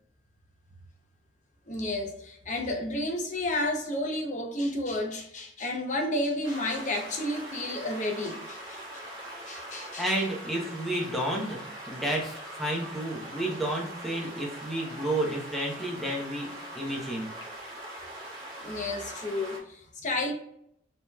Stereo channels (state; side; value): normal; both; correlation 0.35